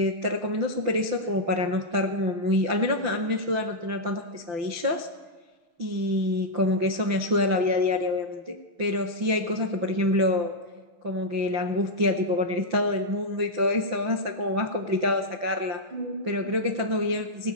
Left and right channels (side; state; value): left; late; 5.9 ms